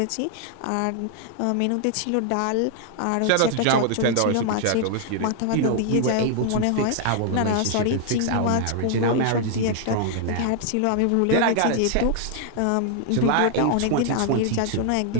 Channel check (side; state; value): both; different; correlation 0.00